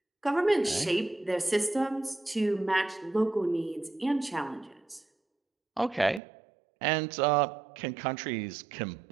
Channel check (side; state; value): left; drops out; at 6.2 s